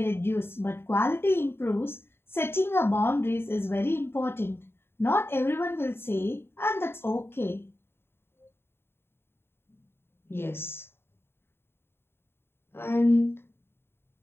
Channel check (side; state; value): right; late; 0.11 ms